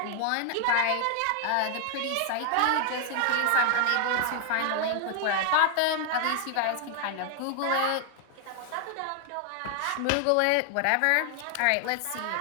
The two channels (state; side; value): different; both; correlation 0.00